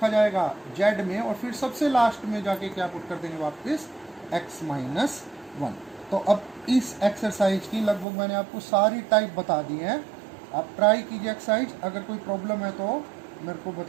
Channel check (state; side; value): drops out; left; at 8.1 s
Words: जाएगा, z में, और फिर सबसे लास्ट में जाके क्या पुट कर देंगे वापस, x माइनस 1। तो अब इस एक्सरसाइज की लगभग मैंने आपको सारी टाइप बता दी है। आप ट्राई कीजिए एक्सरसाइज, अगर कोई प्रॉब्लम है तो मेरे को